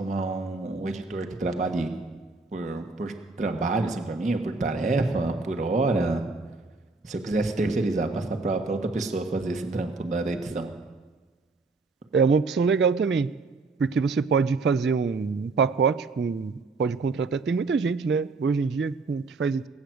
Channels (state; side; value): quieter; left; 3.9 dB